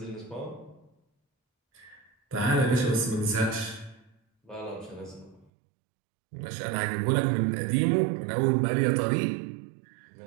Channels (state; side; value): drops out; left; at 5.5 s